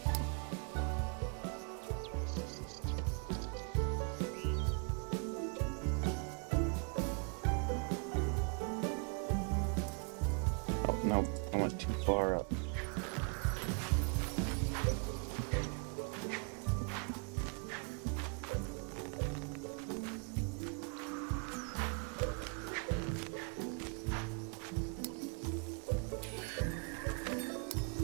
Oh no, I went too far up.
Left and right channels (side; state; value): left; quieter; 36.1 dB